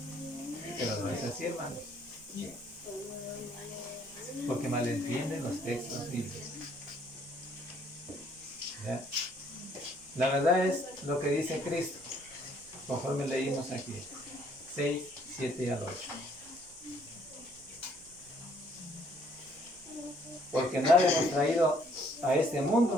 Pero no es así, hermanos. Porque malentienden los textos bíblicos. ¿Ya? La verdad es lo que dice Cristo, conforme leímos aquí, 6, 7 al 8. Porque nada hemos traído a este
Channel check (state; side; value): noise; right; hum, 30 dB below the sound